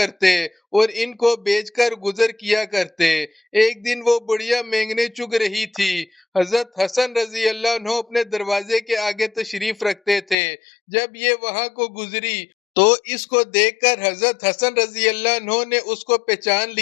और इनको बेचकर गुजर किया करते। एक दिन वो बुढ़िया मेंगने चुग रही थी। हजरत हसन रजी अल्लाह अन्हो अपने दरवाजे के आगे तशरीफ रखते थे। जब ये वहां को गुजरी तो इसको देखकर हजरत हसन रजी अल्लाह अन्हो ने उसको पहचान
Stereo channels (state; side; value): drops out; right; at 10.4 s